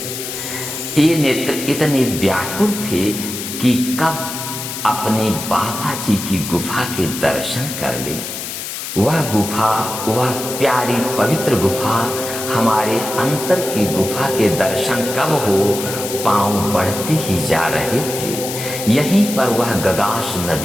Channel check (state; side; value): noise; left; hiss, 7 dB below the sound